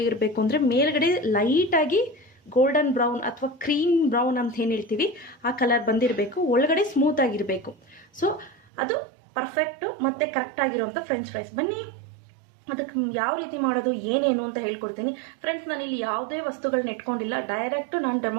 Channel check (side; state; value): left; drops out; at 8.7 s